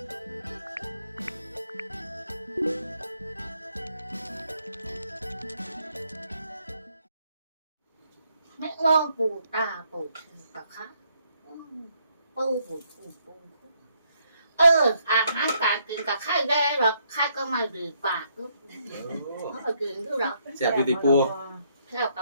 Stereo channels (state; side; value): inverted; both; correlation -0.72